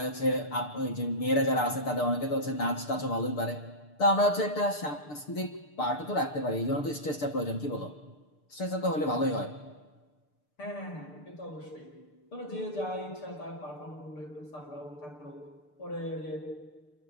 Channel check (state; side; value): late; right; 6.7 ms